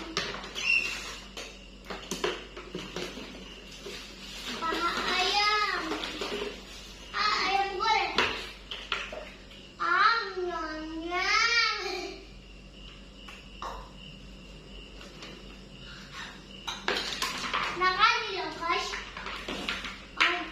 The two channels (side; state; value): both; identical; correlation 1.00